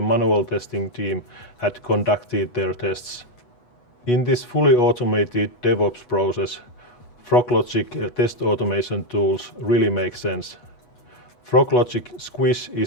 manual testing team had conducted their tests. In this fully automated DevOps process, Froglogic test automation tools really make sense. Froglogic Squish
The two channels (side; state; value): right; late; 8.2 ms